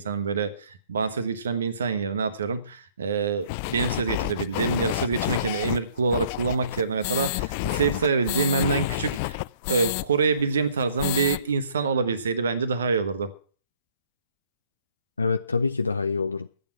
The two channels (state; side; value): inverted; both; correlation -0.58